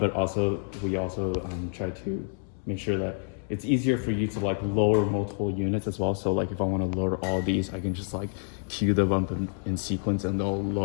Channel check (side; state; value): right; silent; 59 dB below the other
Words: we also try to make sure that it's easier for you to like lower multiple units as well. So like if I want to lower all these, I can just like cue them up in sequence and they'll